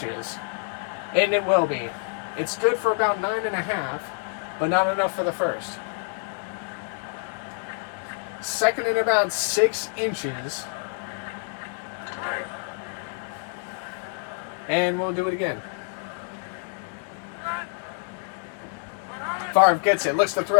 and it will be. It's good for about 9.5, but not enough for the first. 2nd and about 6 inches. And we'll do it again. Favre gets it, looks to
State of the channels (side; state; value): right; silent; 57 dB below the other